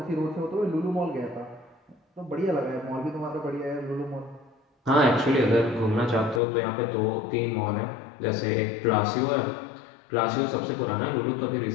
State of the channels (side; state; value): right; drops out; at 6.4 s